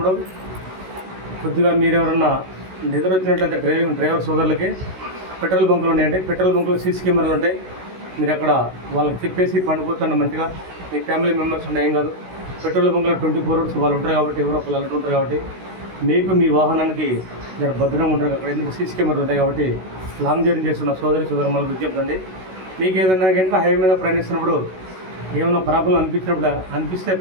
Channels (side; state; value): left; late; 16 ms